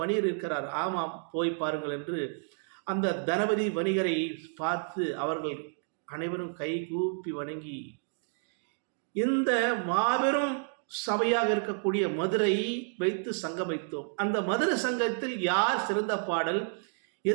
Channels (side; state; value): left; silent; 58 dB below the other